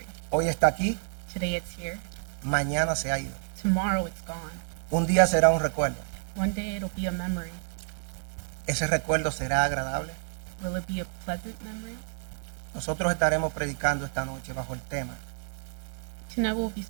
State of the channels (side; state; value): left; silent; 58 dB below the other